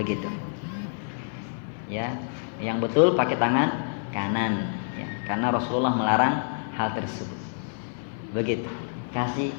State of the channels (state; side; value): silent; right; 58 dB below the other